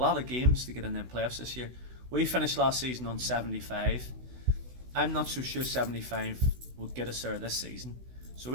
of games to get in them playoffs this year. We finished last season on 75. I'm not so sure 75 will get us there this season. So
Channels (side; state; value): left; late; 16 ms